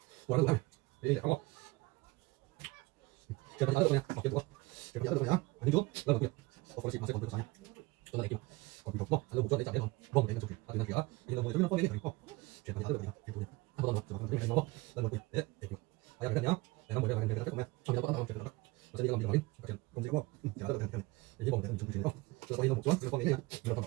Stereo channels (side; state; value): left; quieter; 22.3 dB